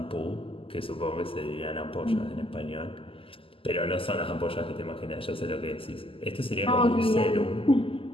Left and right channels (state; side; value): late; right; 0.26 ms